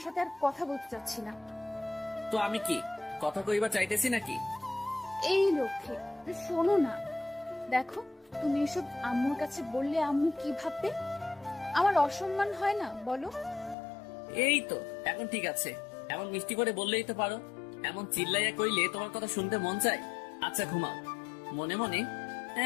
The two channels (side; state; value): right; drops out; at 13.8 s